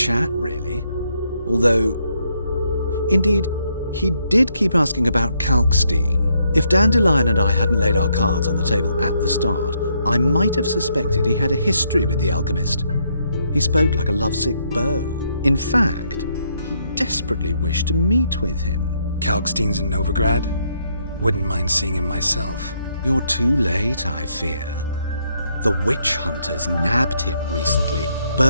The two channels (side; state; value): both; inverted; correlation -0.75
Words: really. Although, indeed, he did keep asking about Kalkstein. If Dandelion and I hadn't laid our cards on the table at the start, I might have suspected he had a history with the alchemist. He spoke like a lovesick beau. In fact, He desperately wished to meet with him. Kalkstein's in Novigrad? Wouldn't mind seeing him myself. You're too late, I fear. The witch hunters nabbed him recently,